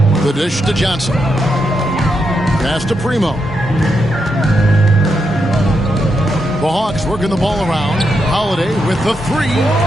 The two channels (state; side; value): normal; both; correlation 0.83